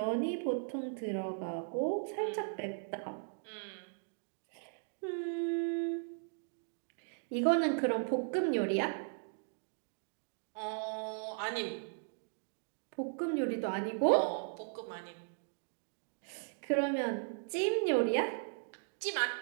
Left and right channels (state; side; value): silent; left; digital silence